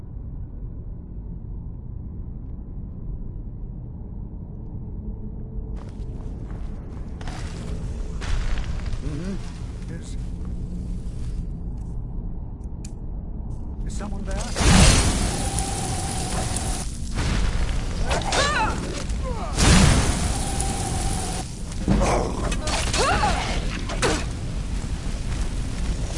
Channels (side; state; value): both; identical; correlation 1.00